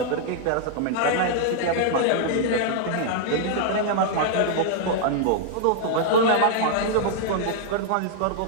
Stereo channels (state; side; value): different; both; correlation -0.01